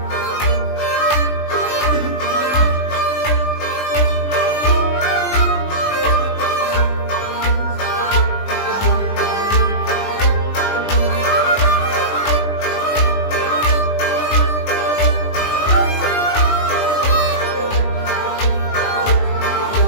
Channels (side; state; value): right; late; 20 ms